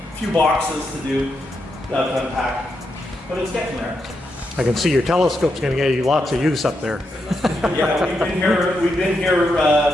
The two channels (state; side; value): normal; both; correlation 0.83